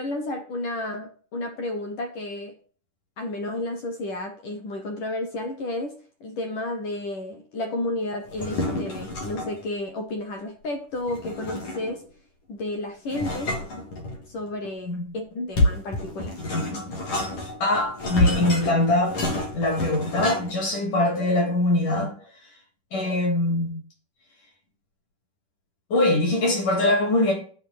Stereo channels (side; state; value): right; late; 10 ms